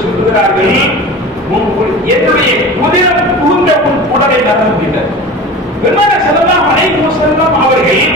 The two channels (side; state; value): both; normal; correlation 0.35